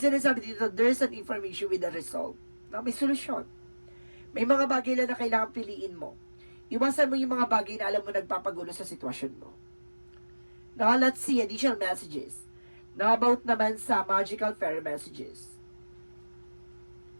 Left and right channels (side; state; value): both; inverted; correlation -1.00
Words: dito, there's an information with a result. No? May solusyon. May mga bagay na kailangan piliin mo. Iwasan mo yung mga bagay na alam mo nagpapagulo sa sitwasyon mo. Now, let's see additional messages. Now, about naman sa magical fairy messages.